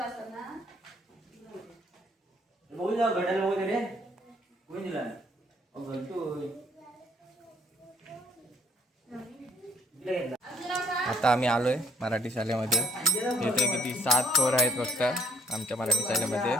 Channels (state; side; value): normal; both; correlation 0.67